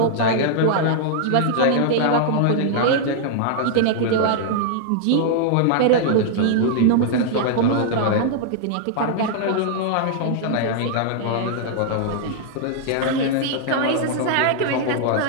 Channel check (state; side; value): different; both; correlation -0.01